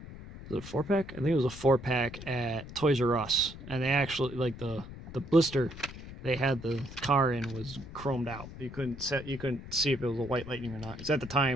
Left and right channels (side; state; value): left; noise; rumble, 13 dB below the sound